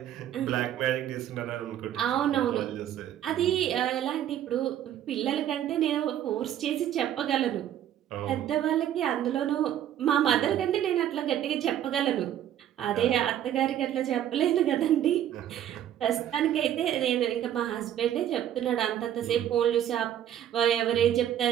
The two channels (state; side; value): quieter; left; 11.0 dB